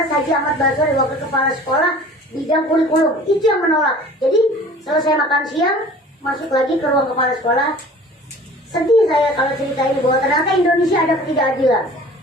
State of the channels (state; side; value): normal; both; correlation 0.45